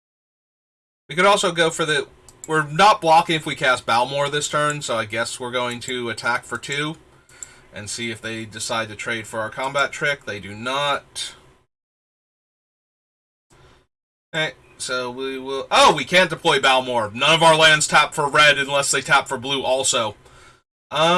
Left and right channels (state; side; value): identical; both; correlation 1.00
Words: We could also go for the... We're not blocking if we cast Balmor this turn, so I guess we're going to attack for 2 and see if they decide to trade for our combat trick. They do not. Okay, so we will... Oh, we can't deploy Balmor. None of our lands tap for red unless they tap for blue also.